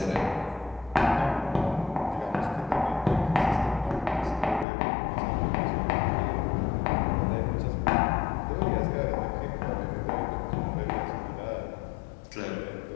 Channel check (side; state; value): right; drops out; at 4.7 s